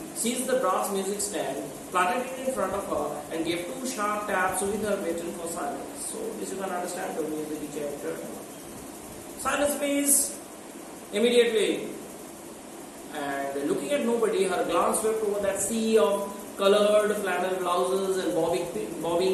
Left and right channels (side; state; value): both; identical; correlation 1.00